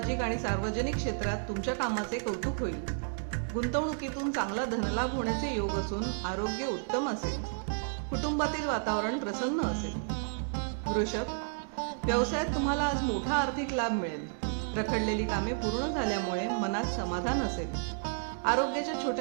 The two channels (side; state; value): left; silent; digital silence